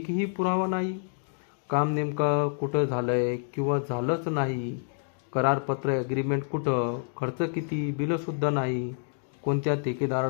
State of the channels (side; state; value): right; silent; digital silence